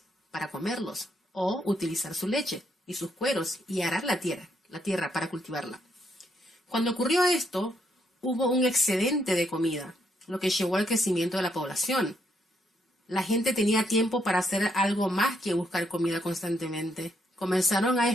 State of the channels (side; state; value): both; normal; correlation 0.75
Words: para comerlos, o utilizar su leche y sus cueros y arar la tierra para cultivarla. Cuando ocurrió esto, hubo un excedente de comida, lo que llevó al crecimiento de la población. La gente tenía tiempo para hacer algo más que buscar comida constantemente. Comenzaron a